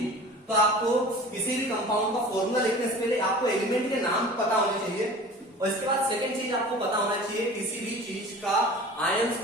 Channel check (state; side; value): normal; both; correlation 0.41